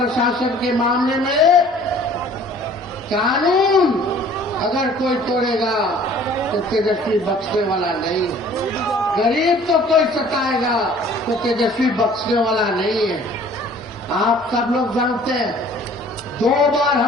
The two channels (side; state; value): both; normal; correlation 0.52